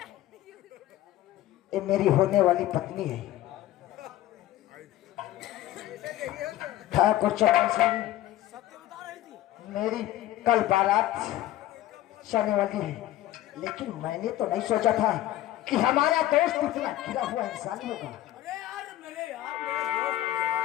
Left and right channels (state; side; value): quieter; right; 14.4 dB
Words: ये मेरी होने वाली पत्नी है, ठाकुर चंदन सिंह। मेरी कल बारात जाने वाली है, लेकिन मैंने तो नहीं सोचा था कि हमारा दोस्त इतना गिरा हुआ इंसान होगा। अरे यार मेरे